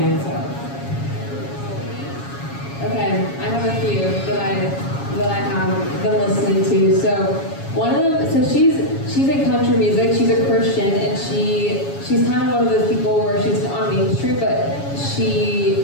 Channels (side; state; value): right; late; 7.2 ms